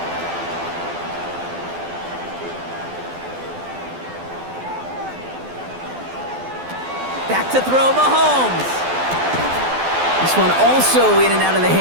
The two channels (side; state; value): left; late; 12 ms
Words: Back to throw, Mahomes. This one also in and out of the